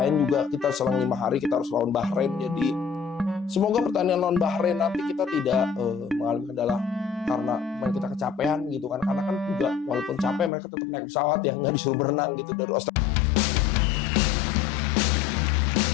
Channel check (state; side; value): drops out; right; at 10.5 s